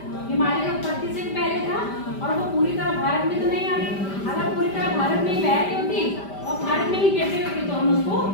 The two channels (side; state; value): right; late; 5.1 ms